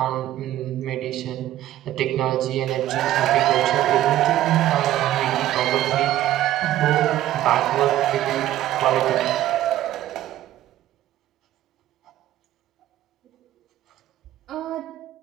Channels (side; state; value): left; quieter; 13.5 dB